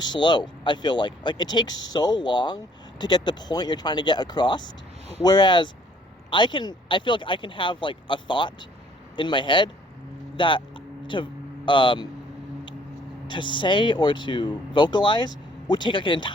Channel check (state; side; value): normal; both; correlation 0.60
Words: I feel like it takes so long to get the point you're trying to get across, whereas I feel like I can have like a thought in my head that to say or to vocalize would take like an